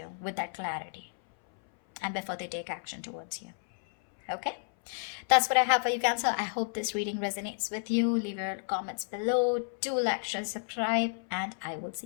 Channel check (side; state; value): right; silent; 57 dB below the other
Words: with that clarity and before they take action towards you, okay? That's what I have for you, Cancer. I hope this reading resonates with you. Leave your comments below. Do like, share, subscribe, and I will